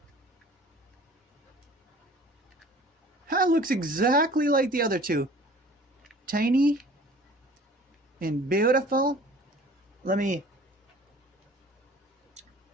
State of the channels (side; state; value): both; normal; correlation 0.48